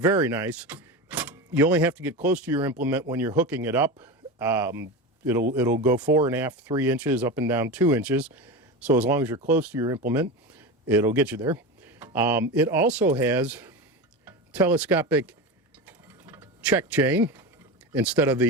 nice. You only have to get close to your implement when you're hooking it up. It'll go 4.5, 3 inches, up and down 2 inches. So as long as you're close to your implement, it'll get you there. It also has telescopic check chain instead of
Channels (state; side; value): normal; both; correlation 0.23